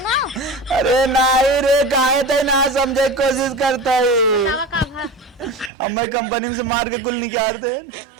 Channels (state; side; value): drops out; left; at 5.7 s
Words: अरे नहीं रे काहे ते ना समझे कोशिश करता है ना का भा अम्मा कंपनी से मार के कुल निकाल दे